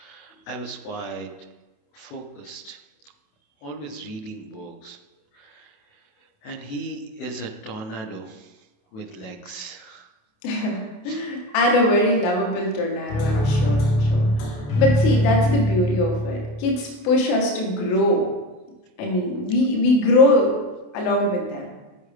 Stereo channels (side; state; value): right; late; 28 ms